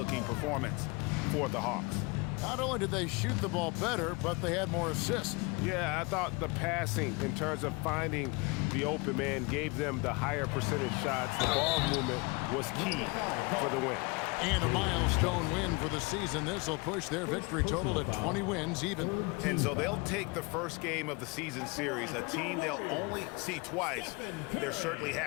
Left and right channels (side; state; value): right; quieter; 27.2 dB